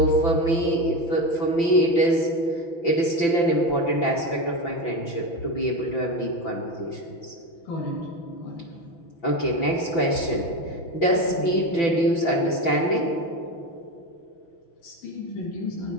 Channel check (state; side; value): late; right; 5.9 ms